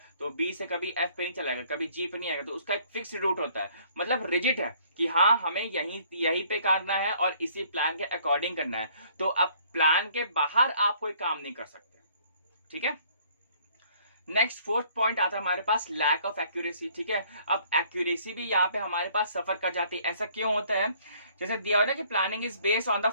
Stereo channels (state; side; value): inverted; both; correlation -0.60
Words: तो बी से कभी एफ पे नहीं चलाएगा, कभी जी पे नहीं आएगा, तो उसका एक फिक्स रूट होता है, मतलब रिजिड है कि हाँ हमें यहीं पे करना है और इसी प्लान के अकॉर्डिंग करना है। तो अब प्लान के बाहर आप कोई काम नहीं कर सकते, ठीक है। नेक्स्ट फोर्थ पॉइंट आता है हमारे पास लैक ऑफ एक्यूरेसी, ठीक है। अब एक्यूरेसी भी यहाँ पे हमारे पास सफर कर जाती है। ऐसा क्यों होता है? जैसे दिया हुआ ना कि planning is based on the